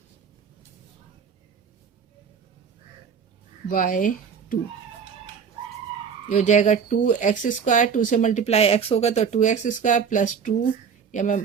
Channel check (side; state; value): left; quieter; 6.7 dB